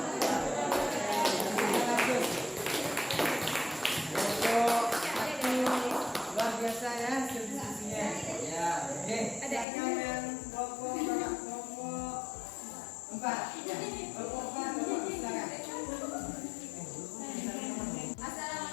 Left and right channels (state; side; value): drops out; right; at 9.7 s